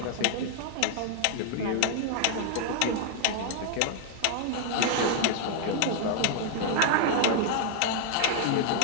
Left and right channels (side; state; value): both; different; correlation -0.01